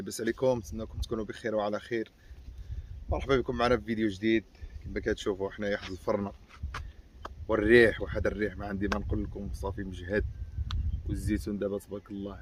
عليكم؟ نتمنىكم تكونوا بخير وعلى خير. مرحبا بكم معنا في فيديو جديد. كما كتشوفوا حنايا حد الفرن والريح، وهذا الريح ما عندي ما نقول لكم، صافي مجهد. والزيتون دابا تبارك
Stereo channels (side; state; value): both; identical; correlation 1.00